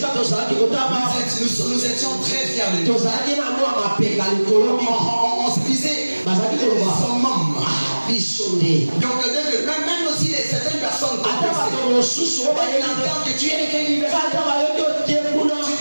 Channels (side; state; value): both; inverted; correlation -1.00